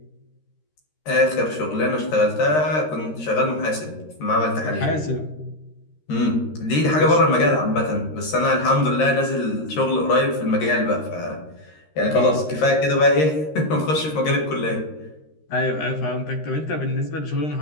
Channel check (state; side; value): late; right; 13 ms